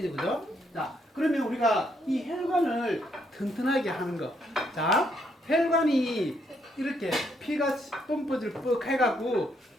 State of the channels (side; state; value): both; normal; correlation 0.74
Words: 그죠? 자, 그러면 우리가 이 혈관을 튼튼하게 하는 거. 자, 혈관이 이렇게 피가 펌프질 뻑 해갖고